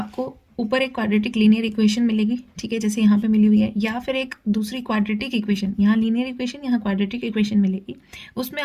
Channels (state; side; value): identical; both; correlation 1.00